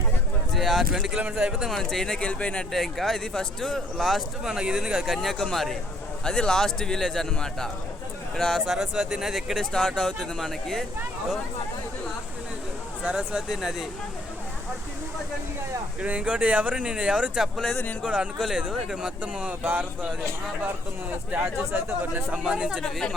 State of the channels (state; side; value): normal; both; correlation 0.64